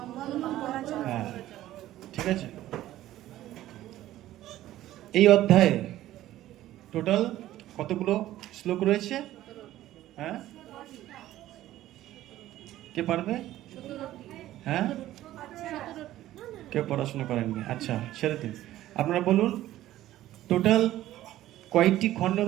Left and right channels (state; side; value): quieter; left; 14.3 dB